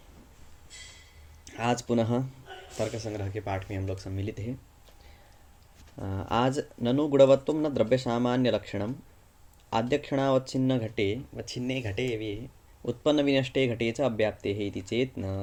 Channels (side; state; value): both; identical; correlation 1.00